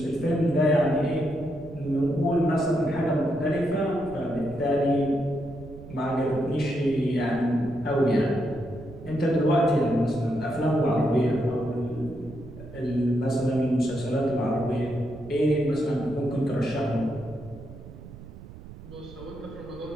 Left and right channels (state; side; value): noise; right; rumble, 16 dB below the sound